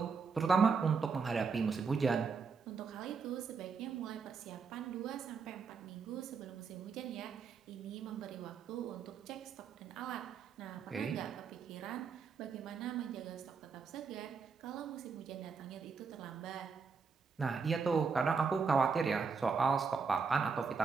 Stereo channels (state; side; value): quieter; left; 5.3 dB